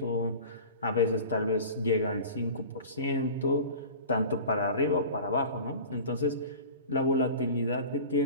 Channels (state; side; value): inverted; both; correlation -0.37